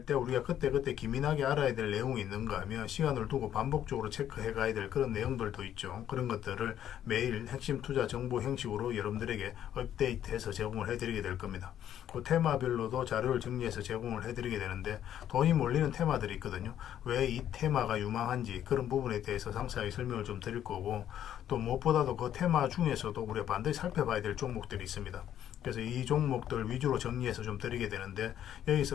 때 우리가 그때 기민하게 알아야 될 내용이 있는가 하면 시간을 두고 반복적으로 체크해 가야 될 그런 내용들도 있죠. 그런 것들을 매일 핵심 투자 정보 형식으로 여러분들에게 업데이트해서 제공을 해드리게 될 겁니다. 그 테마별로도 자료를 정리해서 제공을 해드리게 되는데, 돈이 몰리는 테마들이 있거든요. 왜 이 테마가 유망한지 그런 부분에 대해서 상세하게 설명을 좀 드릴 거고, 또 무엇보다도 그 테마 중에서도 우리가 반드시 살펴봐야 될 종목들이 있습니다. 그래서 이 종목들 위주로 정리해서 좀 드리게 되는데,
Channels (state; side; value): quieter; right; 10.7 dB